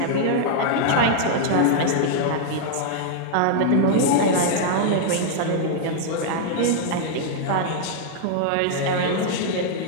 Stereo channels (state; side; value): different; both; correlation -0.01